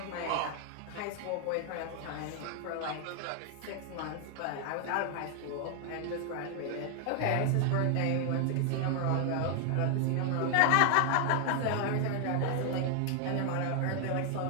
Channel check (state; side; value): different; both; correlation 0.00